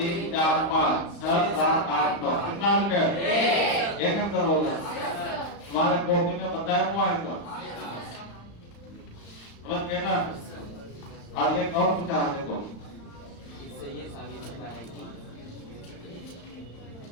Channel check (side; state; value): right; late; 35 ms